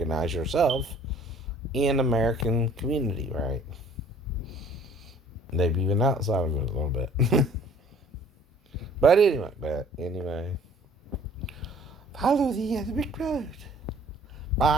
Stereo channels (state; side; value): normal; both; correlation 0.53